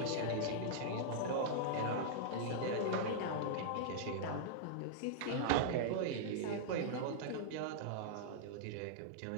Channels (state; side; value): different; both; correlation -0.02